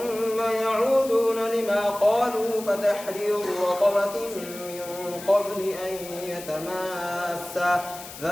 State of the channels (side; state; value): left; noise; hiss, 14 dB below the sound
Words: يعودون لما قالوا فتحرير رقبة من قبل أن يتماسا